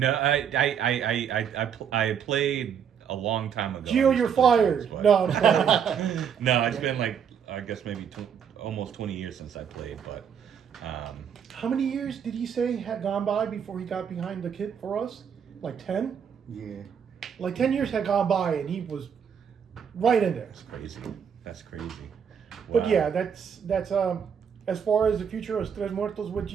I played a long time ago. Geo, you're fired. No, I'm sorry. No, it's been I guess maybe almost 20 years since I played, but. How many years did he say had gone by before he got behind the kit for us? Like 10? Yeah. Like 10 years had gone by and he was right in there. That's crazy. Wow. But yeah, that's as far as the future of Trez Muertoz with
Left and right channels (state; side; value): quieter; left; 7.6 dB